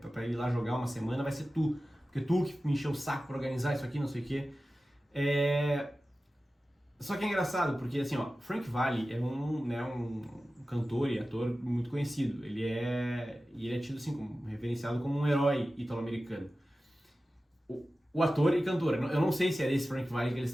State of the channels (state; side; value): normal; both; correlation 0.95